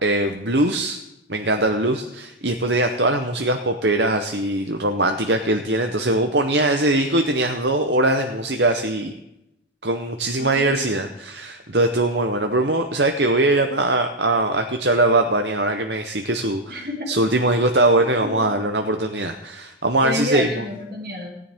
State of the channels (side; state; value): both; normal; correlation 0.02